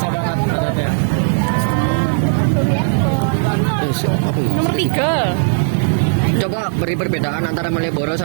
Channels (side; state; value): left; silent; digital silence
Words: banget adatnya. Nomor 3. Coba beri perbedaan antara Malioboro